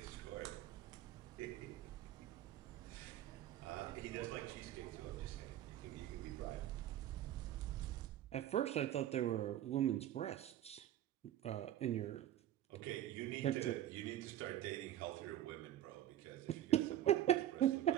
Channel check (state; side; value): quieter; left; 12.2 dB